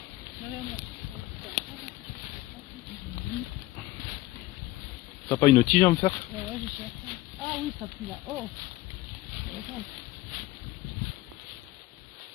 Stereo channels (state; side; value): quieter; right; 17.5 dB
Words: T'as pas une tige à me faire? Ouais, je cherche. Ah oui, ça pue là. Oh.